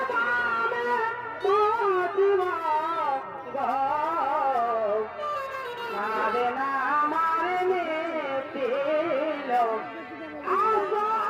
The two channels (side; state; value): both; identical; correlation 1.00